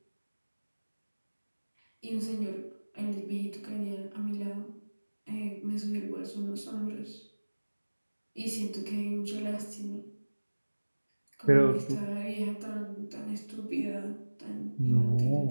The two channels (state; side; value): inverted; both; correlation -1.00